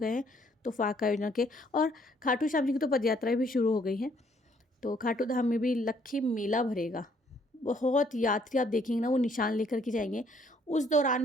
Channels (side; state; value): both; normal; correlation 0.65